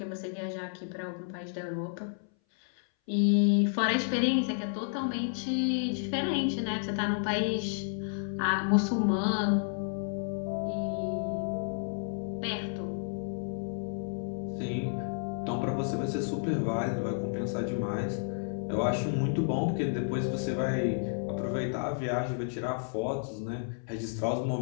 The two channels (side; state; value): right; silent; 57 dB below the other